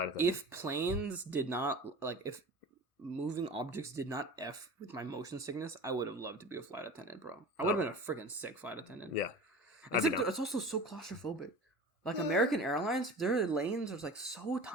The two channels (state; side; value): normal; both; correlation 0.36